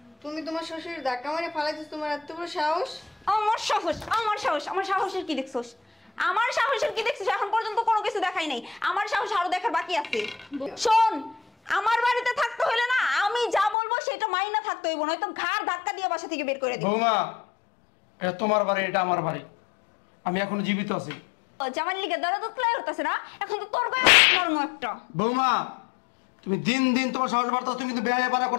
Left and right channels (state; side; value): drops out; right; at 13.8 s